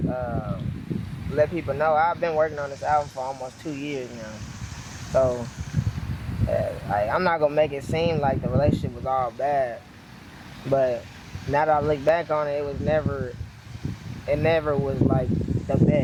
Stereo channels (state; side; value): identical; both; correlation 1.00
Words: let people know I've been working on this album for almost 2 years now. So I'm not gonna make it seem like the relationship was all bad, but now that I look back on it, it never was the